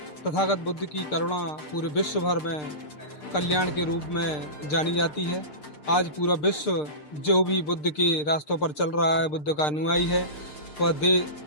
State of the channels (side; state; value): right; late; 6.7 ms